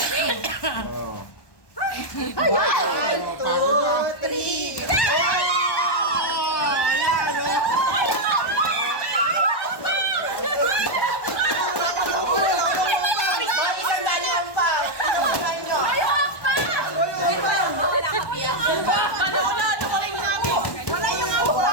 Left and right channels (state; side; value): late; right; 1.1 ms